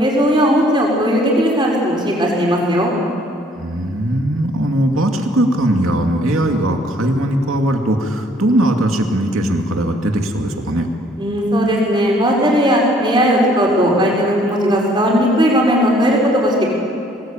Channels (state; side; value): normal; both; correlation 0.61